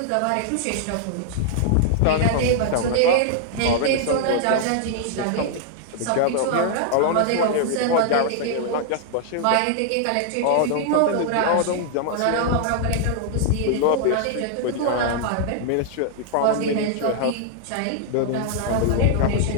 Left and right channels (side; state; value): both; different; correlation -0.01